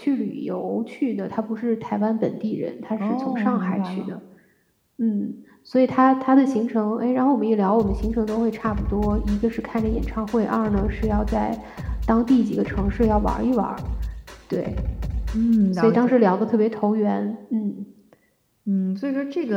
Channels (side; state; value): both; identical; correlation 1.00